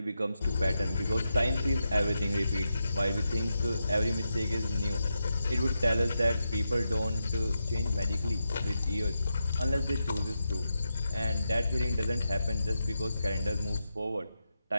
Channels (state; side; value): inverted; both; correlation -0.87